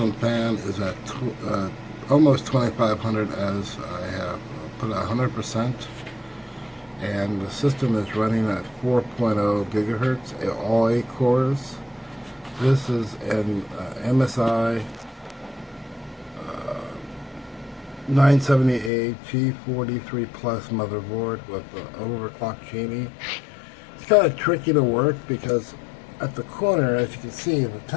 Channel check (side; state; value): right; drops out; at 18.9 s